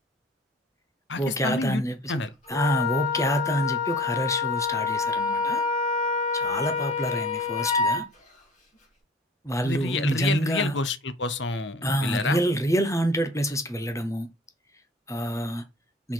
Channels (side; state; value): both; normal; correlation 0.44